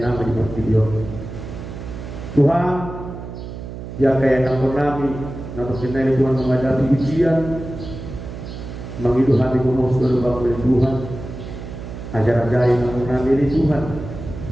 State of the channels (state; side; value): noise; right; hum, 10 dB below the sound